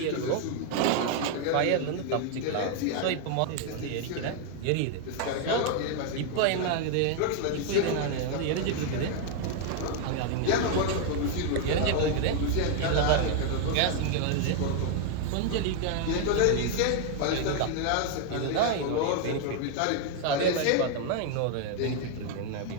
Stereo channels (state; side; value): different; both; correlation 0.00